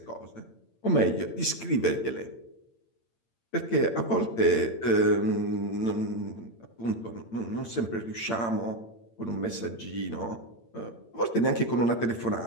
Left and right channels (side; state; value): right; late; 8.8 ms